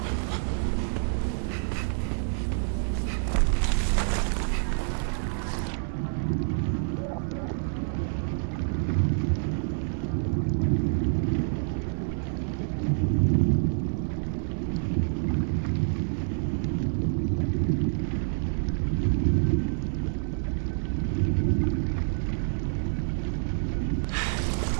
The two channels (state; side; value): silent; left; 56 dB below the other